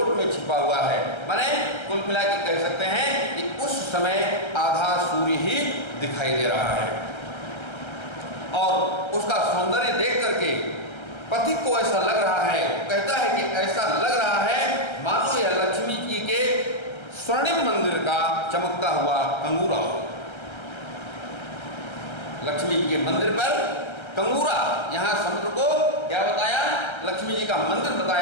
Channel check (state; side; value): late; right; 1.3 ms